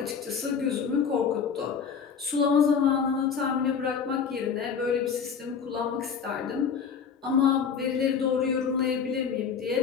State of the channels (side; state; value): right; quieter; 6.5 dB